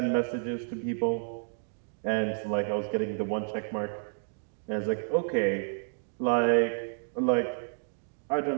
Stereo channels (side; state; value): left; silent; digital silence